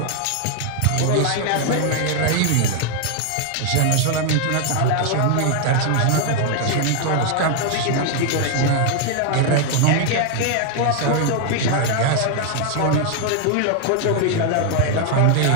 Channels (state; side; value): different; both; correlation 0.00